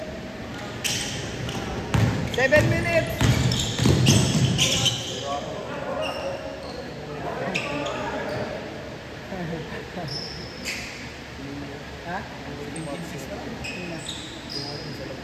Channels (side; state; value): both; identical; correlation 1.00